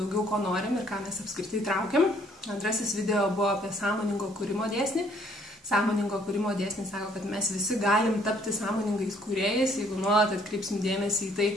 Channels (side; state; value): both; normal; correlation 0.63